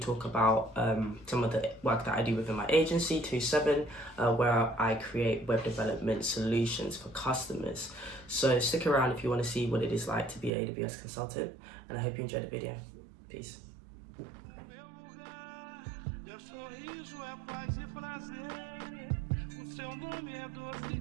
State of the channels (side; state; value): left; drops out; at 10.5 s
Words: about some of the work that I do within my agency, 27, where I create web development solutions for customers. So stick around if you want to see what it is like to be an AWS consultant, and I hope you enjoy the video. Peace. Sorriso é paz e prazer, o seu nome é doce